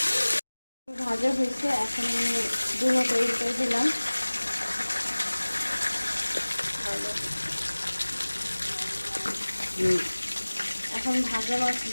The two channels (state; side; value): inverted; both; correlation -1.00